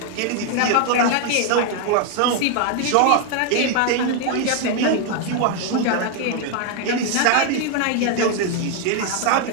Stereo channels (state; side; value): different; both; correlation 0.01